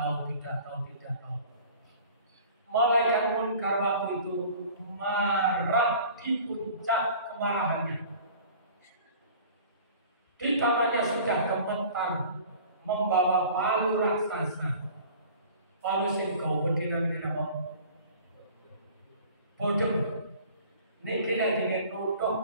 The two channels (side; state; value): both; inverted; correlation -0.45